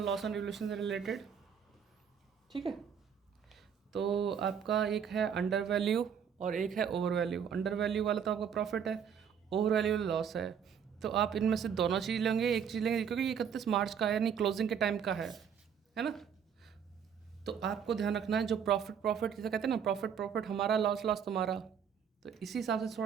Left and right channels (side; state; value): left; quieter; 7.7 dB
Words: loss on revolution से रिलेटेड, ठीक है। तो आपका एक है अंडर वैल्यू और एक है ओवर वैल्यू। अंडर वैल्यू वाला तो आपका प्रॉफिट है, ओवर वैल्यू लॉस है। तो आप इनमें से दोनों चीज़ लेंगे, एक चीज़ लेंगे, क्योंकि 31 मार्च का है, यानी क्लोजिंग के टाइम का है ना। तो आपको ध्यान रखना है जो प्रॉफिट जैसे कहते हैं ना, प्रॉफिट हमारा, लॉस तुम्हारा, तो इसी हिसाब से